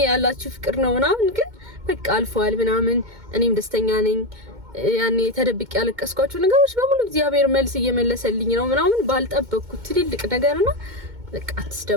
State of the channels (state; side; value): late; left; 2.2 ms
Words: ያላችሁ ፍቅር ነው ምናምን፣ ግን በቃ አልፏል ምናምን። እኔም ደስተኛ ነኝ። ያኔ ተደብቄ ያለቀስኳቸው ነገሮች በሙሉ እግዚአብሔር መልስ እየመለሰልኝ ነው ምናምን ባልጠበቅኩት ትልልቅ ነገርና በቃ